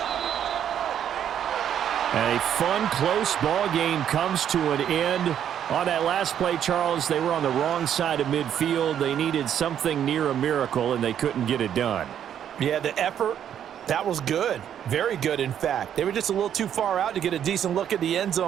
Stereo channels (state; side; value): quieter; left; 9.6 dB